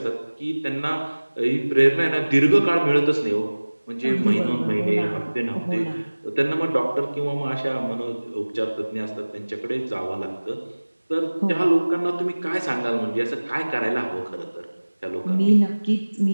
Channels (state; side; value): inverted; both; correlation -1.00